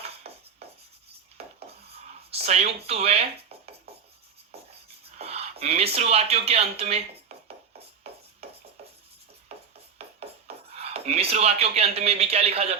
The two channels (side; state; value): left; quieter; 6.5 dB